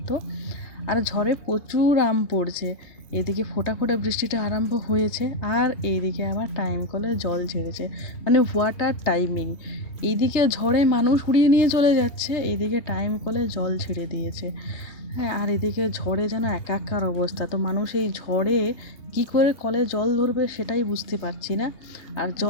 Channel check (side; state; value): right; late; 3.2 ms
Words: আর ঝড়ে প্রচুর আম পড়ছে। এদিকে ফোঁটা ফোঁটা বৃষ্টিটা আরম্ভ হয়েছে আর এইদিকে আবার টাইম কলে জল ঝেড়েছে, মানে ওয়াটার টাইমিং। এইদিকে ঝড়ে মানুষ উড়িয়ে নিয়ে চলে যাচ্ছে, এইদিকে টাইম কলে জল ছেড়ে দিয়েছে। হ্যাঁ, আর এদিকে ঝড়ে যেন একাকার অবস্থা। তো মানুষ এই ঝড়ে কি করে কলে জল ধরবে সেটাই বুঝতে পারছি না। আর